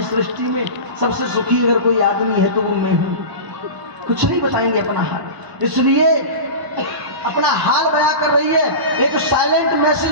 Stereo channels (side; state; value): left; late; 1.0 ms